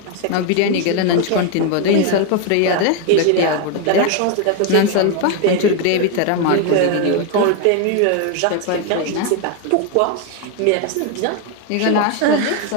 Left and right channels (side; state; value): both; different; correlation 0.01